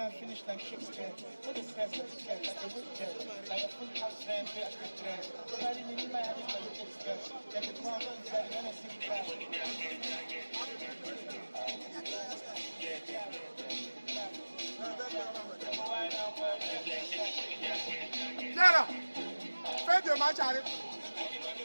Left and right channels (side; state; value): both; inverted; correlation -1.00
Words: Finish like Shakespeare, what is stress, what is stress, like a wicked, like a full house van, pay a quick dress. Nobody need my head, like a big stress. They could come inside, when I see the guy. Zara, fais de match, arrête.